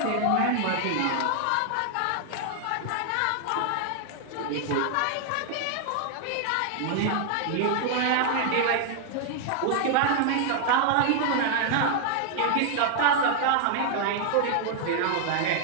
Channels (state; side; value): different; both; correlation 0.00